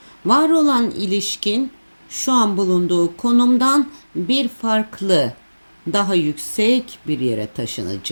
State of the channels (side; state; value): both; inverted; correlation -1.00